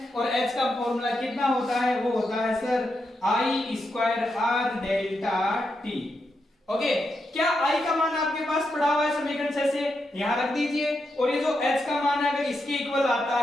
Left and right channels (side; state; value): both; normal; correlation 0.84